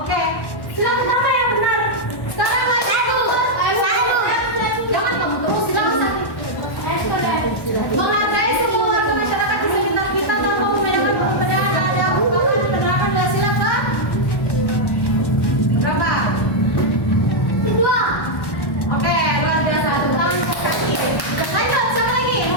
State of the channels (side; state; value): right; late; 1.1 ms